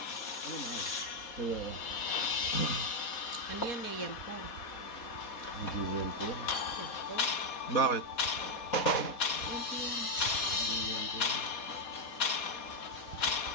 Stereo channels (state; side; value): late; right; 4.2 ms